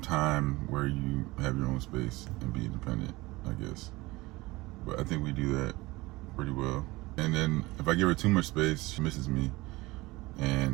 time where you have your own space and be independent, I guess. But I think we do that pretty well. And then if I give her too much space, she misses me.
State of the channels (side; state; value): left; quieter; 21.1 dB